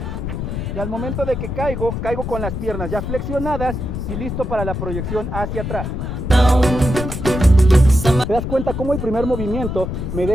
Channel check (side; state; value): left; noise; rumble, 4 dB below the sound